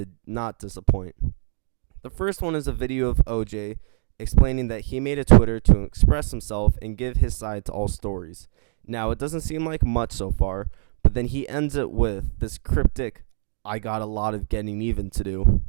not disappoint. The first one is a video of OJ explaining that he made a Twitter to express himself and give his side to all stories. Now, it doesn't seem like much so far, but then he ends it with this cryptic, "I got a lot of getting even to do."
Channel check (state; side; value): silent; left; digital silence